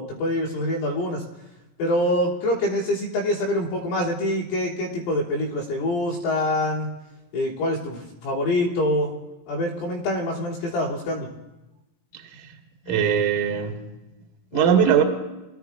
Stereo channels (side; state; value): right; late; 17 ms